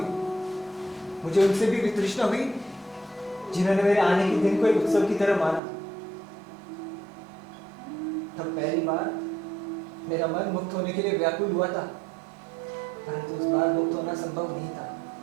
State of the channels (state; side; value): drops out; left; at 5.6 s